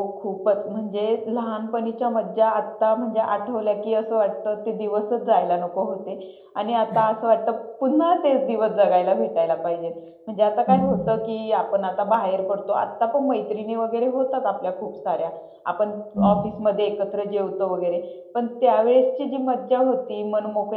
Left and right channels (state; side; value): identical; both; correlation 1.00